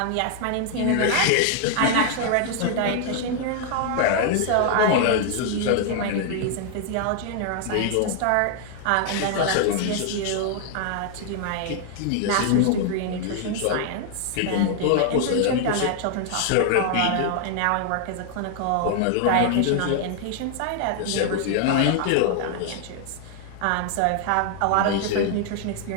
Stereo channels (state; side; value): different; both; correlation 0.00